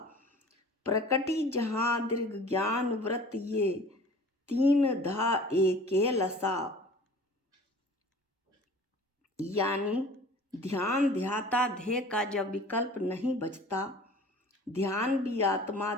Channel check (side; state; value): both; normal; correlation 0.45